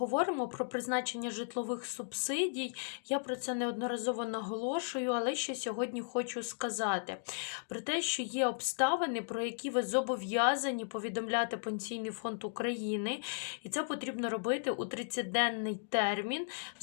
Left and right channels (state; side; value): silent; right; digital silence